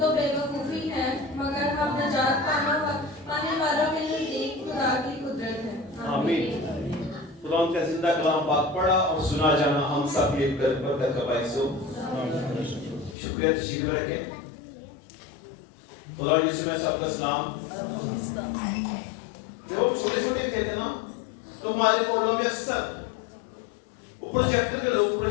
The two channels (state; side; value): drops out; right; at 13.2 s